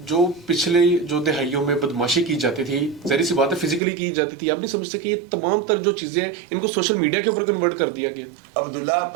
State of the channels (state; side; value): drops out; left; at 3.8 s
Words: جو پچھلے جو دہائیوں میں بدماشی کی جاتی تھی, ظاہر سی بات ہے فزیکلی کی جاتی تھی, آپ نہیں سمجھتے کہ یہ تمام تر جو چیزیں ان کو سوشل میڈیا کے اوپر کنورٹ کر دیا گیا؟ عبداللہ